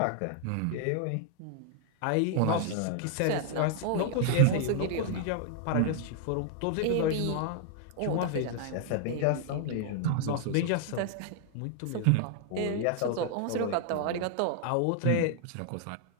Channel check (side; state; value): both; different; correlation 0.00